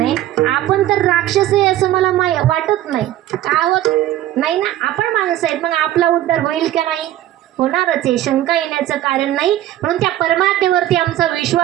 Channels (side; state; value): left; quieter; 13.5 dB